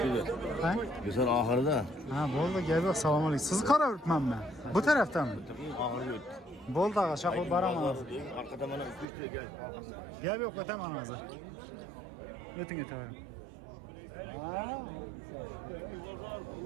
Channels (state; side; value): drops out; left; at 9.1 s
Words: Ha? Güzel ahırda. Ha, bo'ldi, gap yo'q. Assalomu alaykum. Sizni qaraveribman men. Bu tarafdanmi? Ahırda öt. Bo'ldi, ağa, shaqo boraman hozir. Arkada bana 3 lira gel. Gap yo'q, o'taman hozir. O'ting o'tavering.